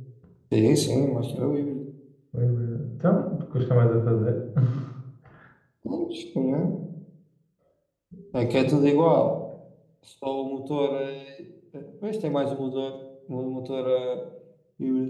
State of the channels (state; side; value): identical; both; correlation 1.00